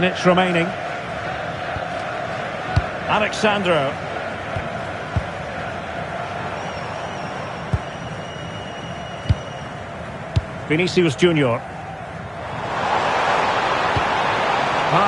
remaining. Alexandro. Vinicius Junior.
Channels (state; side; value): identical; both; correlation 1.00